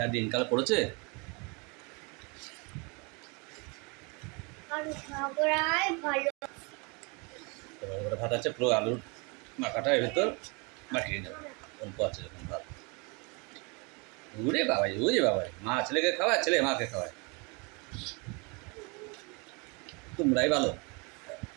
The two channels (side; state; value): left; quieter; 30.5 dB